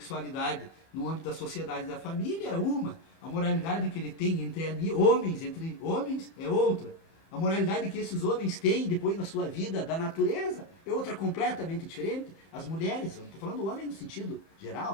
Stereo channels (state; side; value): late; right; 30 ms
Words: no âmbito da sociedade e da família, é uma. A moralidade que ele tem entre homens é outra. A moralidade que esses homens têm depois na sua vida da natureza é outra completamente diferente. As mulheres, eu estou falando do homem no sentido